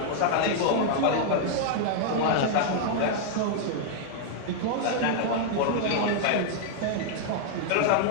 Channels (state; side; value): different; both; correlation 0.00